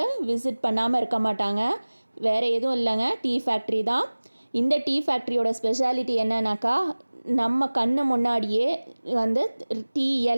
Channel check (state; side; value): inverted; both; correlation -1.00